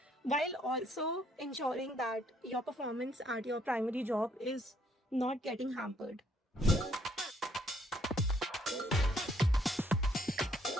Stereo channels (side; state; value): both; normal; correlation 0.68